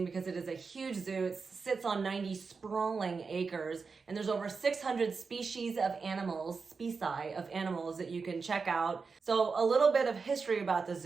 because it is a huge zoo. It sits on 90 sprawling acres, and there's over 600 species of animals that you can check out. So a little bit of history about the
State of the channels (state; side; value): quieter; left; 4.9 dB